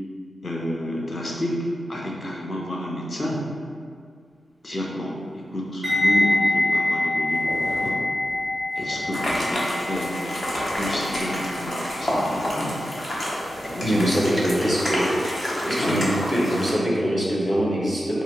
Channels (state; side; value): normal; both; correlation 0.91